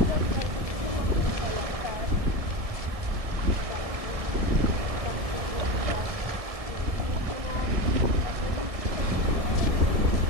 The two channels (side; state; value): left; late; 1.7 ms